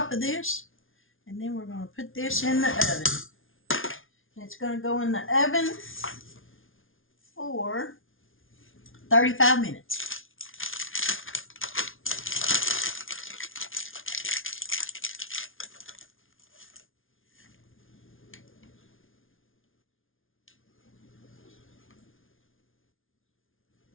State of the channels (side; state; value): right; late; 0.58 ms